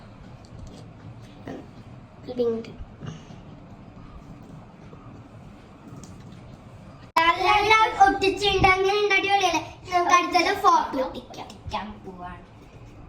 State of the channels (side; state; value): both; identical; correlation 1.00